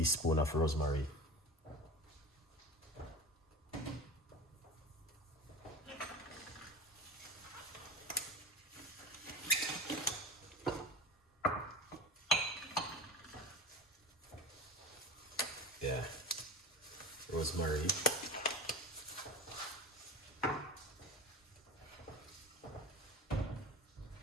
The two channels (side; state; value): both; normal; correlation 0.30